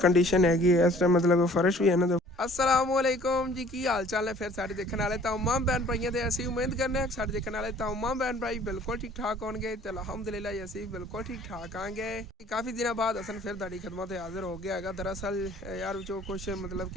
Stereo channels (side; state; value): both; normal; correlation 0.53